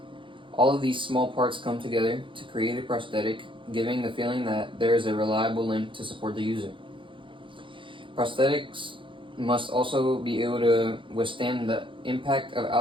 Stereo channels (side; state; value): left; late; 0.25 ms